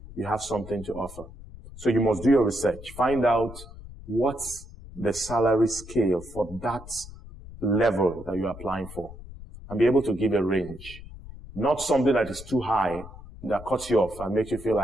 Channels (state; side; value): noise; left; rumble, 15 dB below the sound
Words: You have something to offer. So you must do your research. Find out what's the salary scale for that level that you're applying for. and be able to give a range. Not something that is too high that cuts you off and makes you feel